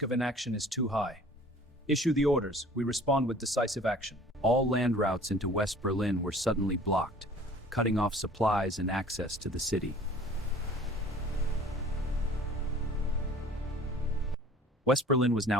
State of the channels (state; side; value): normal; both; correlation 0.48